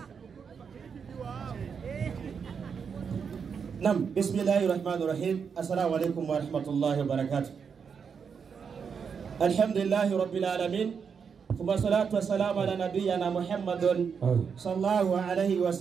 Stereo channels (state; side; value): quieter; left; 6.4 dB